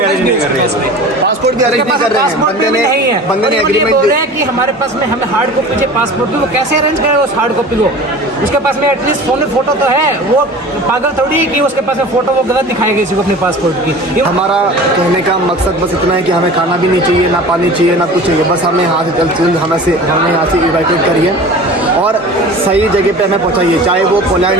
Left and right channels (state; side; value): normal; both; correlation 0.39